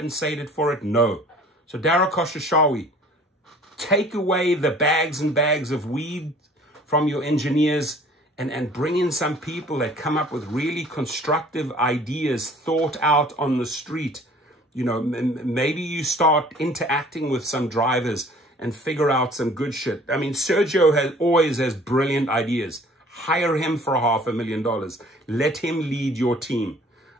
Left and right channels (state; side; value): normal; both; correlation 0.51